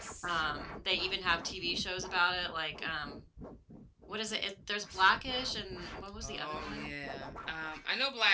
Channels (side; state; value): both; identical; correlation 1.00